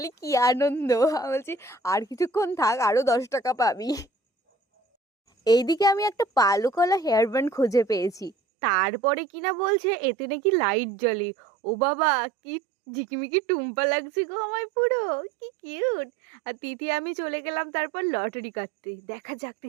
কি আনন্দ। আমি বলছি আর কিছুক্ষণ থাক, আরো 10 টাকা পাবি। এইদিকে আমি একটা পালুকলা হেয়ার ব্যান্ড খুঁজে পেয়েছি। তারপরে কিনা বলছে এতে নাকি লাইট জ্বলে। ও বাবা, কি ঝিকিমিকি টুম্পা লাগছে গো আমায় পুরো, কি কিউট। আর তিথি আমি চলে গেলাম তারপর লটারি কাটতে। দেখা যাক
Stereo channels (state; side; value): drops out; left; at 8.3 s